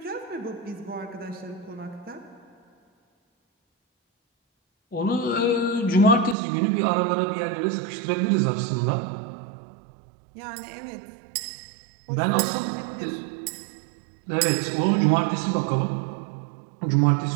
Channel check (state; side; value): drops out; left; at 6.4 s